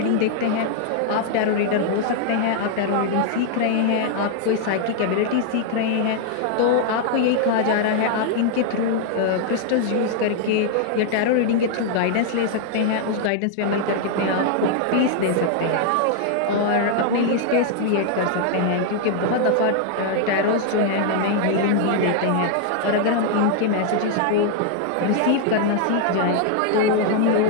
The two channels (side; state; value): both; different; correlation 0.00